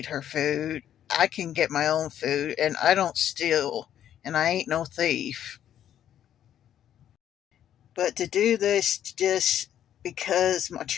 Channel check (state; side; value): quieter; right; 10.6 dB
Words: her food. I can get my own food, and I don't steal, and I ain't no thief. But to do this just because my